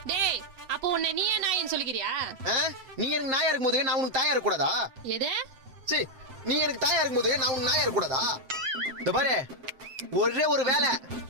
டேய், அப்போ உன்னை நீயே நாயின்னு சொல்லிக்கிறியா? நீங்க எனக்கு நாயா இருக்கும் போது நான் உனக்கு தாயா இருக்க கூடாதா? எது? சரி, நீ எனக்கு தாயா இருக்கும் போது நான் உனக்கு நாயா இருக்க கூடாதா? இந்த பாரு, ஒரே ஒரு வேலை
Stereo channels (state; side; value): late; left; 7.7 ms